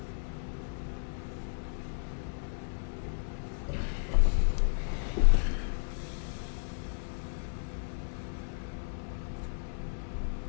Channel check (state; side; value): silent; right; 55 dB below the other